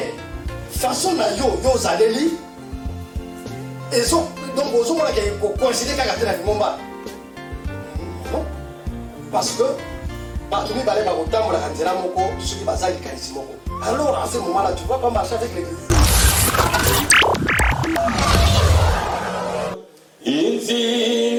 façon na yo zaleli, et donc vous avez considéré qu'à la momba. Non, parce que partout les balais au tambour la canzela moko, ceux qui basent les carismoko. Alors à ce moment-là, tu vas pas marcher avec l'église.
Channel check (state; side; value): identical; both; correlation 1.00